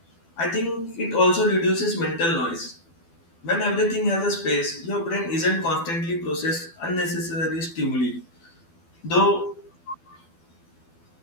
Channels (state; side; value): late; right; 12 ms